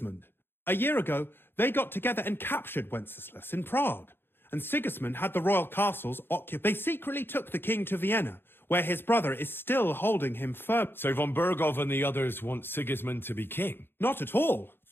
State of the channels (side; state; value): right; late; 0.10 ms